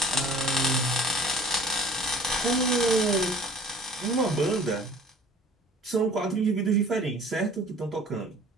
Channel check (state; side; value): normal; both; correlation 0.49